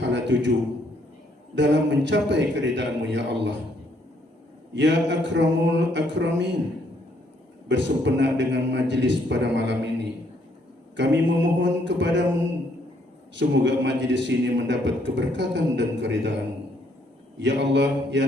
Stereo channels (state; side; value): normal; both; correlation 0.69